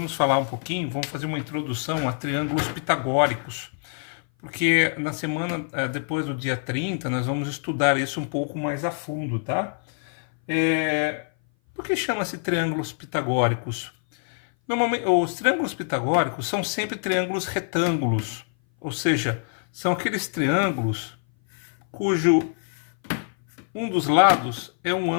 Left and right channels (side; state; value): right; silent; 57 dB below the other